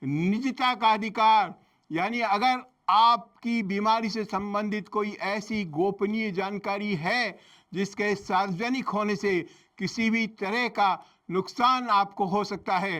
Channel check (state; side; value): identical; both; correlation 1.00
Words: निजता का अधिकार। यानी अगर आपकी बीमारी से संबंधित कोई ऐसी गोपनीय जानकारी है जिसके सार्वजनिक होने से किसी भी तरह का नुकसान आपको हो सकता